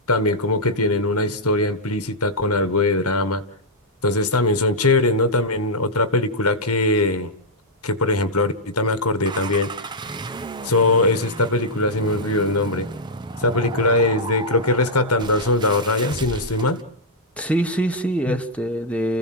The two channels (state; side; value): normal; both; correlation -0.06